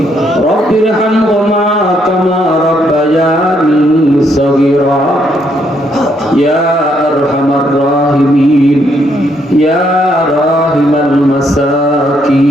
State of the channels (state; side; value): normal; both; correlation 0.73